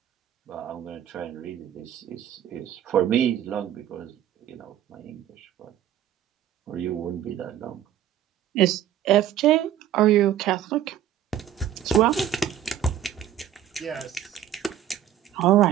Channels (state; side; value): quieter; left; 10.8 dB